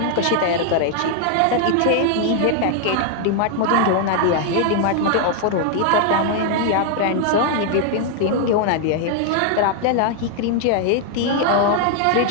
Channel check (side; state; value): both; different; correlation 0.00